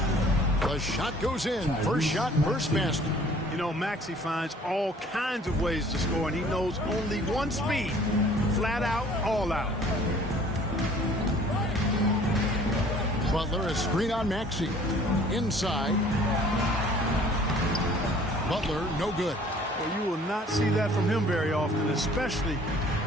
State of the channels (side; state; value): both; normal; correlation 0.53